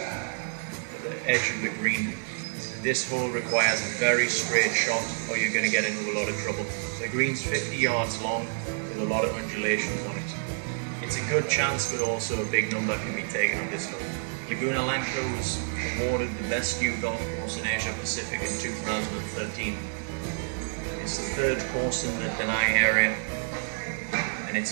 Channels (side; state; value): left; silent; digital silence